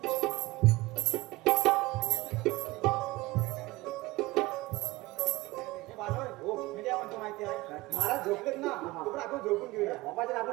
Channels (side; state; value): left; quieter; 20.4 dB